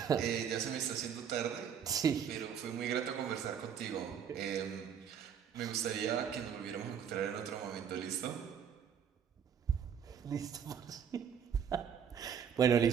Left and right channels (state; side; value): quieter; left; 7.9 dB